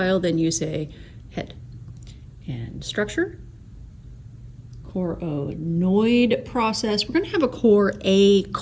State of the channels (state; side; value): identical; both; correlation 1.00